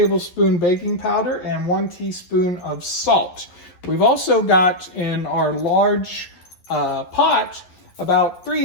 baking powder, and 1 teaspoon of salt. We've also got in our large pot about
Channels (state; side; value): late; right; 11 ms